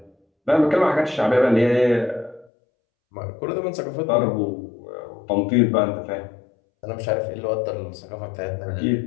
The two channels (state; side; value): drops out; right; at 2.5 s